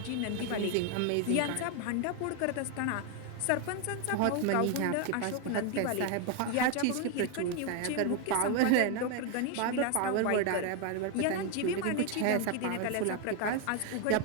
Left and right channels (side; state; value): both; different; correlation 0.01